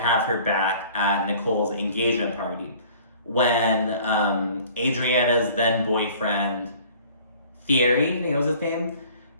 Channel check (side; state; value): both; inverted; correlation -0.50